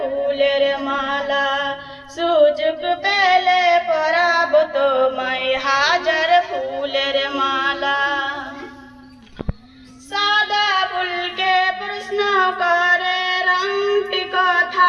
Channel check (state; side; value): identical; both; correlation 1.00